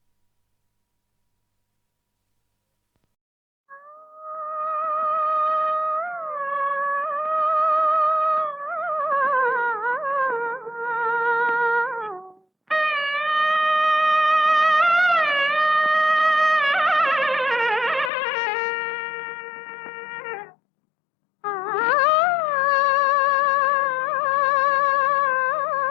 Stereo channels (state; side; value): drops out; right; at 18.1 s